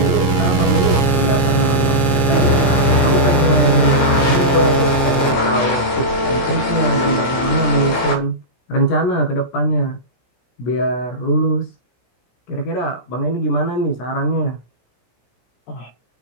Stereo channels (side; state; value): right; late; 17 ms